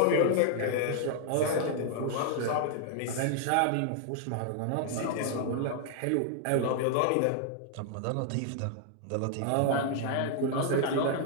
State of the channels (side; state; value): both; different; correlation -0.01